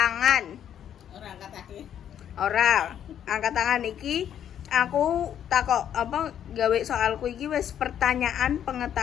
Ora angkat kaki. Ora, angkat tangan iki aku takok apa gawe soalku iki wis pertanyaan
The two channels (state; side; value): quieter; right; 9.7 dB